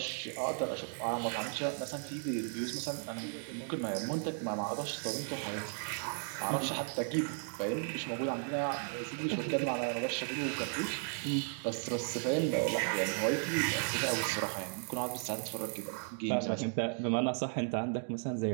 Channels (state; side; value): silent; left; 54 dB below the other